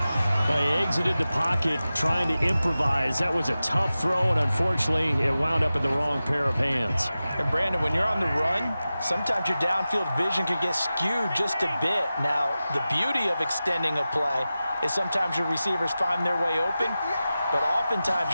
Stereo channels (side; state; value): both; inverted; correlation -0.94